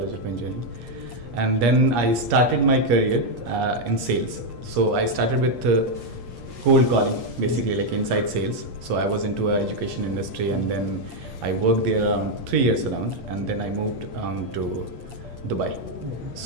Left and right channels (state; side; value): late; left; 8.5 ms